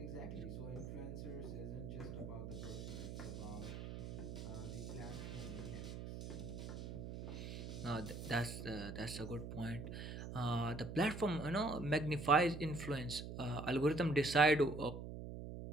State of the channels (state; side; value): noise; right; hum, 7 dB below the sound